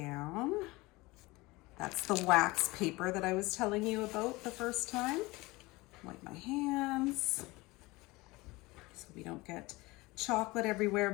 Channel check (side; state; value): right; quieter; 22.0 dB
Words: That's the wax paper that I was telling you about the first time. Wipe my hands so we don't get chocolate everywhere,